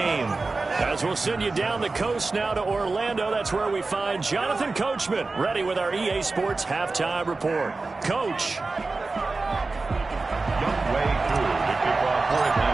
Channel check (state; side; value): quieter; left; 3.7 dB